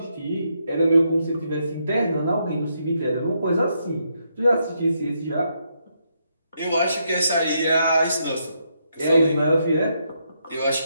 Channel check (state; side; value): inverted; both; correlation -0.78